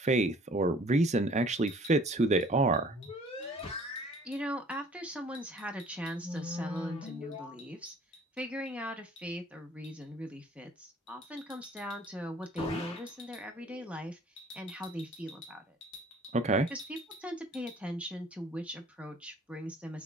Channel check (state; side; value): normal; both; correlation 0.54